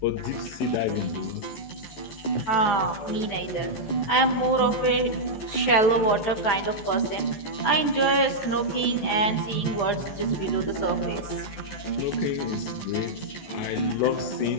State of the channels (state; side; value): late; right; 14 ms